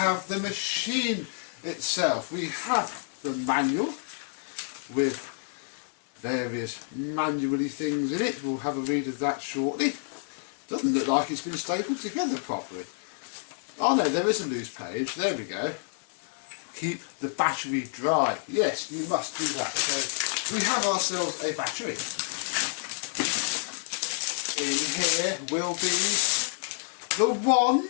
the machine itself. We have the manual with various manually things in it. We'll have a read of that shortly. Doesn't look like it's been stapled together properly. Oh no, there is a loose page. There we go. Keep the battery dry. Yes, you must do that. So we have ourselves a battery. In here will be the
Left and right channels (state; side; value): silent; right; digital silence